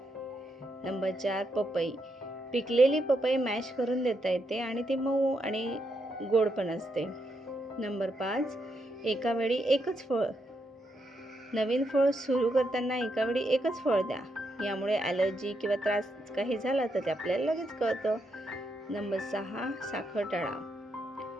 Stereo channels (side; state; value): both; normal; correlation 0.81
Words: नंबर 4 पपई. पिकलेली पपई मॅश करून देता येते आणि ती मऊ आणि गोड पण असते. नंबर 5 एका वेळी एकच फळ. नवीन फळ सुरू करताना एका वेळी एकच फळ द्या. यामुळे ॲलर्जी किंवा त्रास काही झाला तर ते आपल्याला लगेच कळतं. नंबर 6 साखर टाळा.